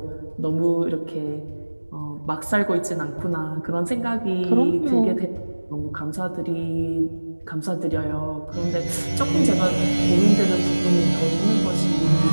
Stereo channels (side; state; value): both; inverted; correlation -1.00